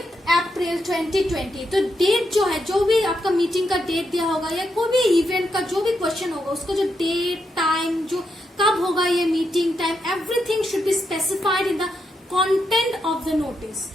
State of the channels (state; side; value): normal; both; correlation 0.82